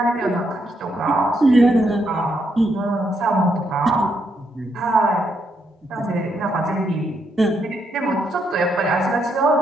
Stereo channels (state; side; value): normal; both; correlation 0.77